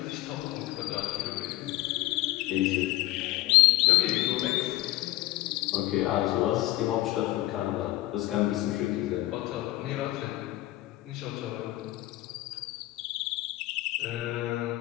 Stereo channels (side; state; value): right; quieter; 17.2 dB